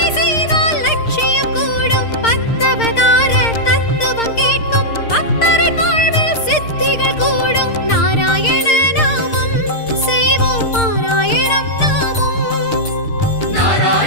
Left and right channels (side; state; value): right; late; 6.6 ms